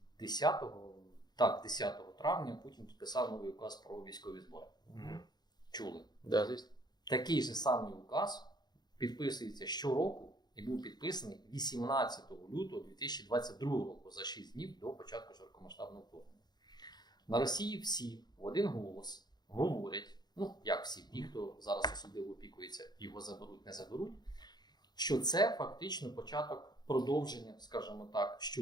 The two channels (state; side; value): late; right; 0.20 ms